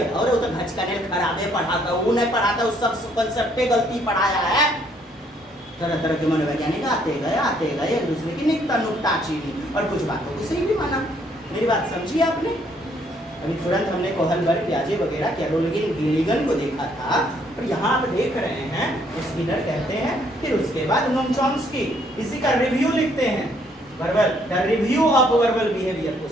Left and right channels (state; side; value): normal; both; correlation 0.67